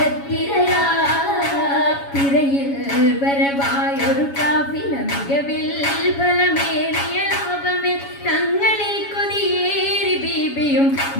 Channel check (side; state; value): right; late; 7.2 ms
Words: വരവായൊരു കാഫില മികവിൽ ഫലമേറിയ ലാഭമിൽ തങ്ങളിൽ കൊതിയേറി ബീബിയും